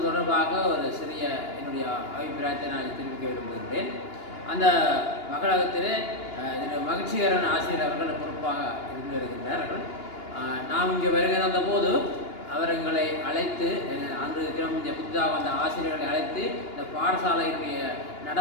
தொடர்பாக ஒரு சிறிய என்னுடைய அபிப்பிராயத்தை நான் தெரிவிக்க விரும்புகின்றேன். அந்த மகளகத்திலே மகிழ்ச்சிகரன் ஆசிரியர் அவர்கள் பொறுப்பாக இருந்து வருகின்றார்கள். நாம் இங்கே வருகை வந்தபோது அவர் எங்களை அழைத்து அன்று தினம் இந்த புதிதாக வந்த ஆசிரியர்களை அழைத்து இந்த பாடசாலையினுடைய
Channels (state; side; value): late; right; 2.8 ms